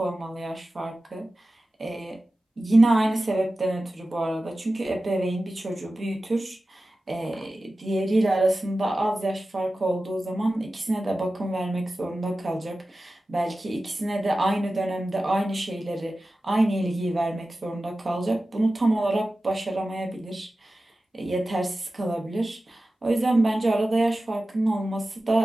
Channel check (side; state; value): both; normal; correlation 0.95